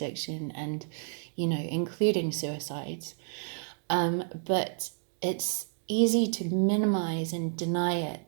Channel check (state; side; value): silent; left; digital silence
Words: and, you know, including suicides. But it's easy to minimize and deny